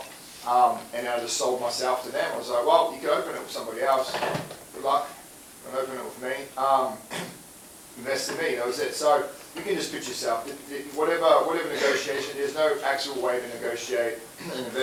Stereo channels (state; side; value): identical; both; correlation 1.00